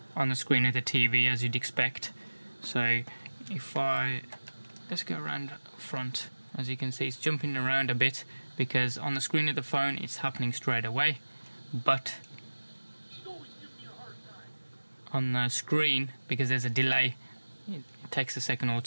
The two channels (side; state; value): both; inverted; correlation -1.00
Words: on the screen of the TV, as you'd expect. So if let's go around front, as you can see it's jumping around a bit, because on the screen of the phone it's happening straight away, but on the screen, because there's a delay, it takes a second or